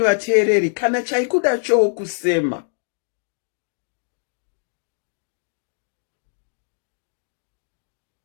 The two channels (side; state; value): right; silent; digital silence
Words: vateereri, kana chaikuda chokusema.